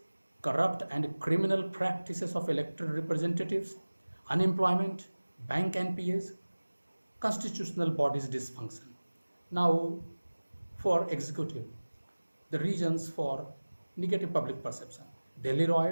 corrupt and criminal practices of elected representatives, unemployment, bank NPAs, constitutional bodies dysfunction. Now, for executive, the reasons for negative public perception: Delhi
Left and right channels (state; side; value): inverted; both; correlation -1.00